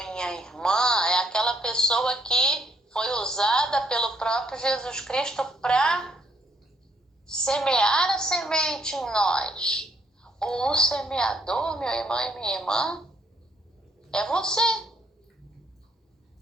irmã, é aquela pessoa que foi usada pelo próprio Jesus Cristo para semear a semente em nós. Ou o semeador, meu irmão e minha irmã, é você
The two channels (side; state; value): both; normal; correlation 0.69